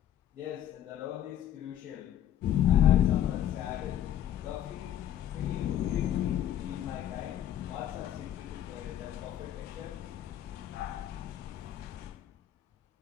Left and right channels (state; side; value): quieter; right; 11.2 dB